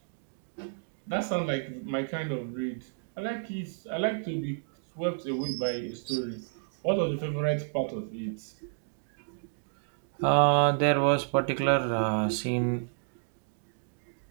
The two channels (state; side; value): silent; left; digital silence